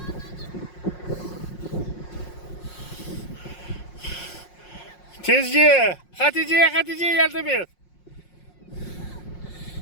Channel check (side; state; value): right; late; 5.5 ms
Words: Tezci. Hatice'ye yardım et.